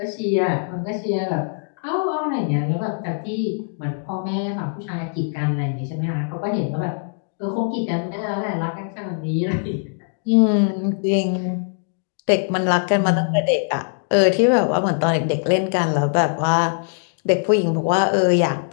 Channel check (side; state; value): right; silent; digital silence